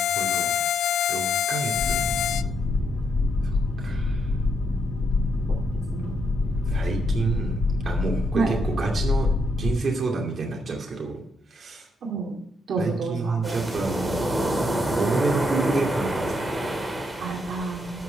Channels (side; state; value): both; normal; correlation 0.76